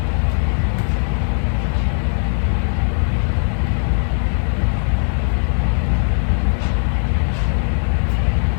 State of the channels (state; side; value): silent; right; digital silence